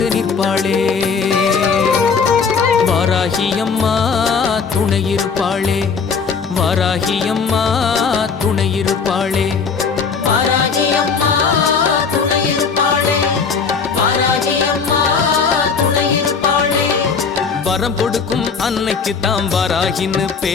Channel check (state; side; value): quieter; right; 5.6 dB